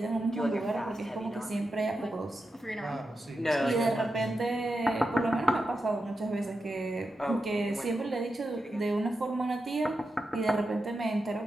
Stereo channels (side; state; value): both; normal; correlation 0.89